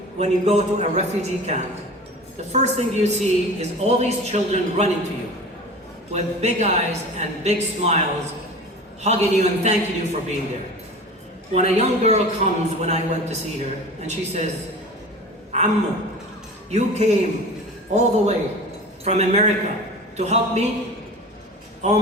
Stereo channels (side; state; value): both; normal; correlation 0.36